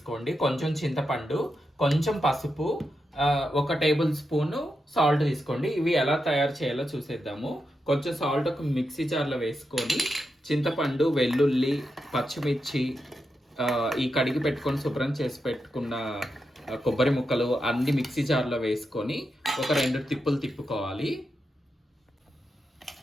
కొంచెం చింతపండు, కొంచెం పసుపు, 1 టేబుల్ స్పూన్ సాల్ట్ తీసుకోండి. ఇవి ఎలా తయారు చేయాలో చూసేద్దాము. కొంచెం సాల్ట్ ఒక మిక్సీ జార్లో వేసుకొని చింతపండు, వెల్లుల్లి, పచ్చిమిర్చి, ఈ కడిగి పెట్టుకొని శుభ్రం చేసి పెట్టుకున్న కొబ్బరి ముక్కలు అన్ని మిక్సీ జార్లో వేసుకొని ఒక 2 తిప్పులు తిప్పుకోవాలి.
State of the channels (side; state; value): both; normal; correlation 0.87